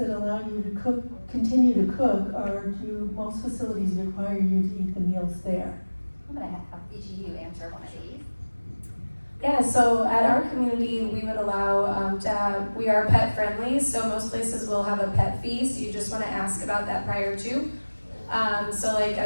allow you to continue to cook, or do most facilities require you to eat the meals there? I'm gonna have each of you answer one of these. Yeah, so at our community, we would allow we are pet friendly, so most places will have a pet fee, so you just wanna ask about that prior to. So like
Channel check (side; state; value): both; inverted; correlation -1.00